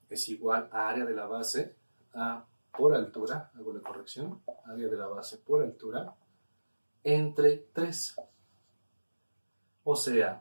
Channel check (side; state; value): both; inverted; correlation -1.00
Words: es igual a área de la base por altura, hago la corrección, área de la base por altura, entre 3. O